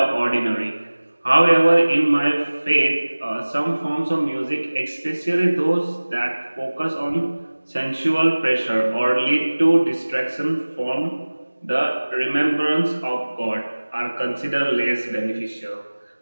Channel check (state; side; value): inverted; both; correlation -1.00